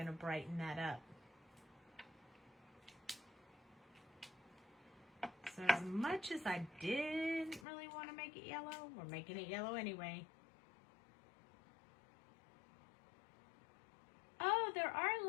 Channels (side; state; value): right; drops out; at 7.7 s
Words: to brighten that up. So as much as I didn't really want to make it yellow, we're making it yellow anyway. Oh, there are